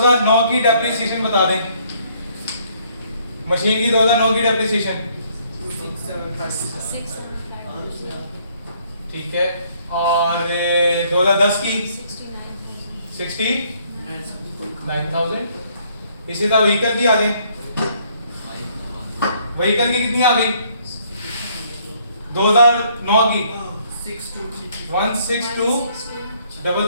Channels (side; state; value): both; inverted; correlation -0.65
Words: की डेप्रिसिएशन बता दें। मशीन की 2009 की डेप्रिसिएशन ठीक है और 2010 की 69,000। इसी तरह व्हीकल की आ जाए। व्हीकल की कितनी आ गई 2009 की